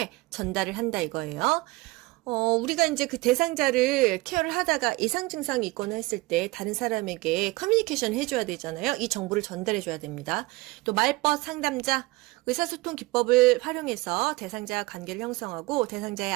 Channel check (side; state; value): left; quieter; 22.5 dB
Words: 전달을 한다 이거예요. 우리가 이제 그 대상자를 케어를 하다가 이상 증상이 있거나 했을 때 다른 사람에게 커뮤니케이션 해줘야 되잖아요. 이 정보를 전달해줘야 됩니다. 또 말벗 상담자, 의사소통 기법을 활용해서 대상자와 관계를 형성하고 대상자의